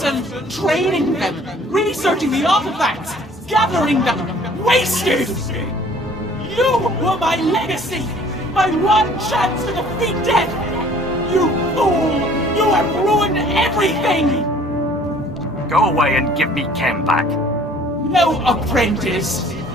training them, researching the artifacts, gathering them, wasted! You were my legacy, my one chance to defeat death! You fool! You have ruined everything! Go away and give me Kem back. No, apprentice.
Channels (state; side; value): normal; both; correlation 0.54